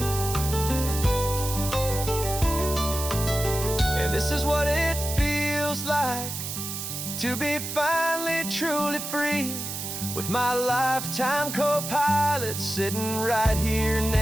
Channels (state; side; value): noise; right; hiss, 6 dB below the sound